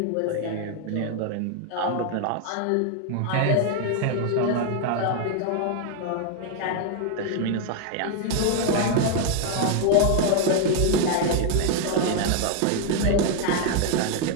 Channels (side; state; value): both; different; correlation 0.01